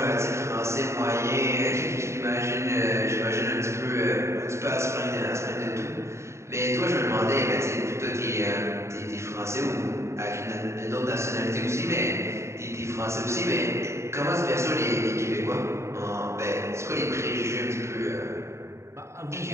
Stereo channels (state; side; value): late; left; 0.14 ms